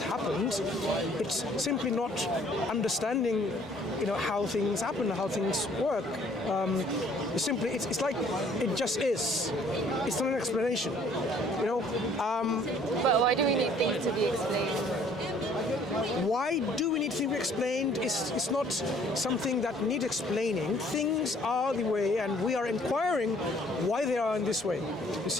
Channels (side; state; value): both; normal; correlation 0.59